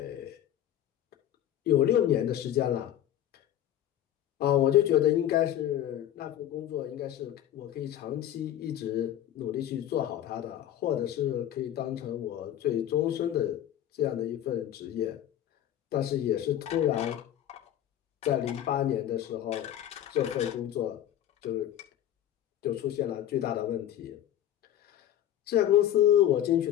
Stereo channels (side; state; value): right; quieter; 11.5 dB